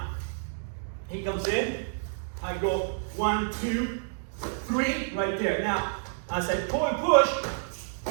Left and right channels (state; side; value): silent; left; digital silence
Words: He comes in, I go 1, 2, 3, right there. Now, as I pull and push,